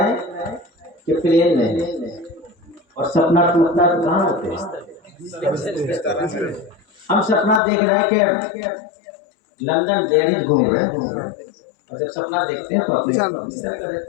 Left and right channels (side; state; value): right; drops out; at 7.6 s